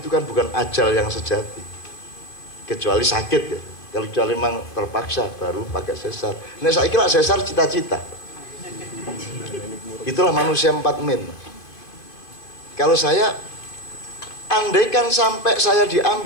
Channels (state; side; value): late; right; 2.5 ms